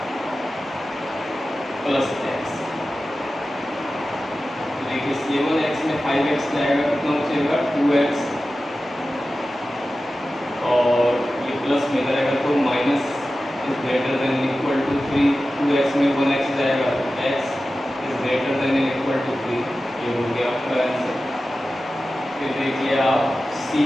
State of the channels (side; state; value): both; normal; correlation 0.94